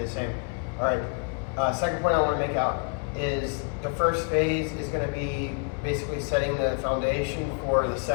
the same. All right, second point I want to make out is the first phase is going to be basically setting the foundation for the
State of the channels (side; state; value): right; quieter; 37.4 dB